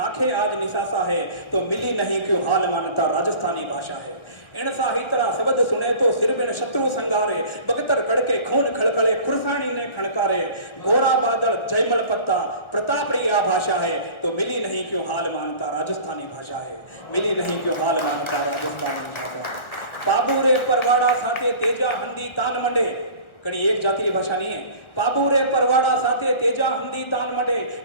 आज निसासा है तो मिली नहीं क्यों हाल मानता राजस्थानी भाषा है। इन साहित्रा शब्द सुने तो सिर बिन शत्रु संगारे बगतर कड़के खून खड़खड़े खुरसानी ने खड़कारे गोरा बादल जयमल पत्ता प्रताप रिया भाषा है तो मिली नहीं क्यों हाल मानता राजस्थानी भाषा है। मिली नहीं क्यों हाल मानता राजस्थानी भाषा। बाबू रे परवाड़ा साथे तेजा हंदी तान मंडे कड़ी एक जाति की भाषा नहीं है। पाबू रे परवाड़ा साथे तेजा हंदी तान मडे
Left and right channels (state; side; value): late; right; 1.5 ms